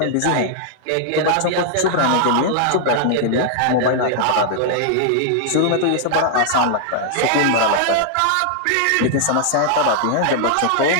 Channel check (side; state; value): both; different; correlation -0.01